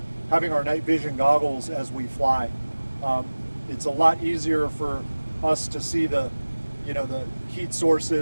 having our night vision goggles as we fly. It's a lot easier for us to see the heat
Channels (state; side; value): inverted; both; correlation -1.00